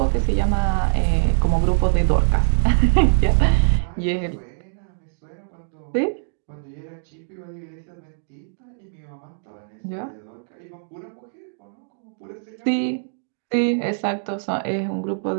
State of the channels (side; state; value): left; silent; digital silence